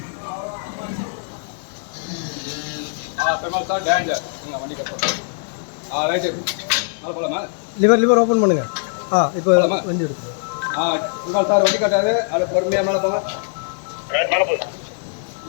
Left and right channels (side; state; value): right; silent; 65 dB below the other